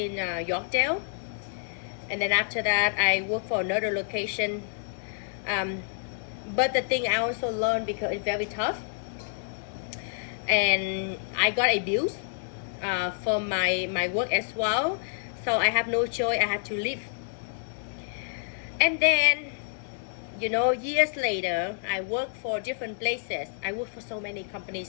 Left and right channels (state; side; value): silent; right; 59 dB below the other